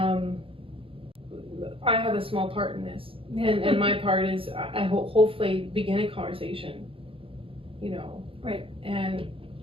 I have a small part in this, and my part is I hopefully begin a conversation, you know, right, and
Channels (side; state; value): left; late; 0.26 ms